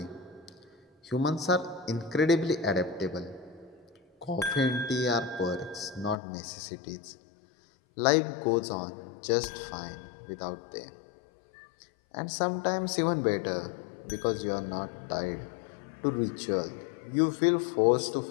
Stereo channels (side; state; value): right; drops out; at 6.2 s